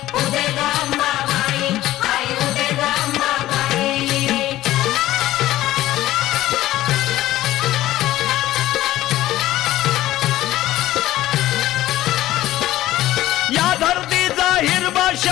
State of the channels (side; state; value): right; quieter; 15.1 dB